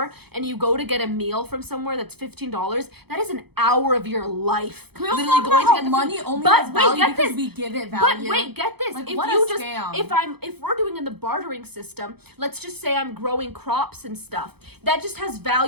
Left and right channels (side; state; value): left; late; 0.97 ms